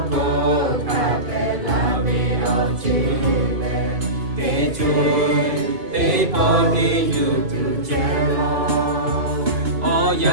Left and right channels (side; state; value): left; late; 2.5 ms